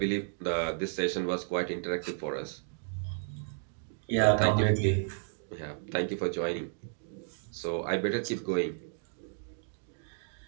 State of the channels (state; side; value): silent; left; digital silence